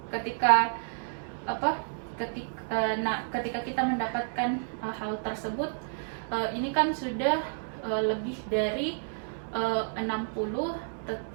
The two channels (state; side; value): silent; left; 58 dB below the other